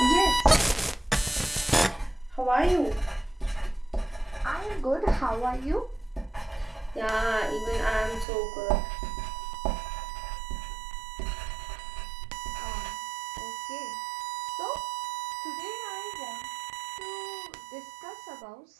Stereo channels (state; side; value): drops out; left; at 8.2 s